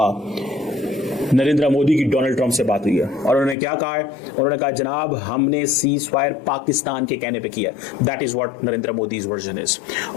नरेंद्र मोदी की डोनाल्ड ट्रंप से बात हुई है। और उन्होंने क्या कहा है? उन्होंने कहा जनाब हमने सीज फायर पाकिस्तान के कहने पे किया। That is what Narendra Modi's version is.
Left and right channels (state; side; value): drops out; right; at 3.6 s